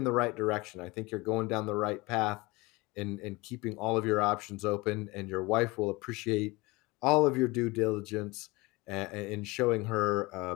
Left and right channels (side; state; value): right; quieter; 23.4 dB